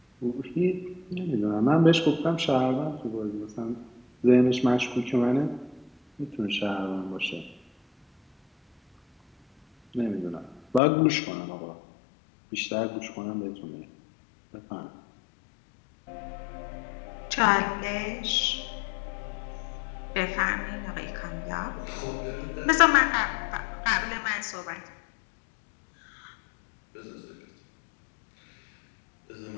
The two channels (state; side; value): drops out; right; at 10.8 s